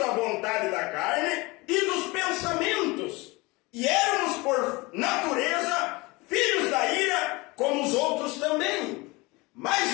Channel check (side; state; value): right; quieter; 24.1 dB